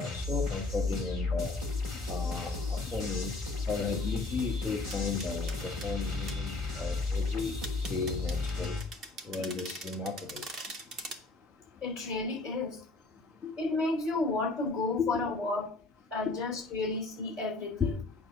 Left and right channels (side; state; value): right; quieter; 3.3 dB